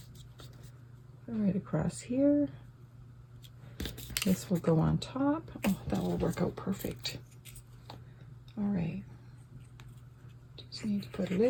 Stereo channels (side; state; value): both; identical; correlation 1.00